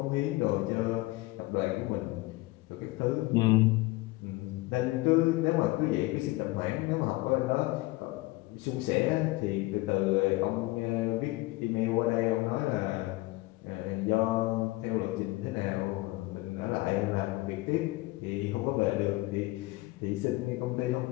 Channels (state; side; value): quieter; right; 20.7 dB